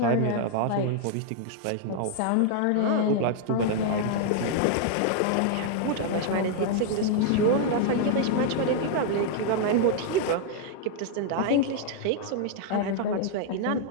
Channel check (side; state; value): both; different; correlation 0.00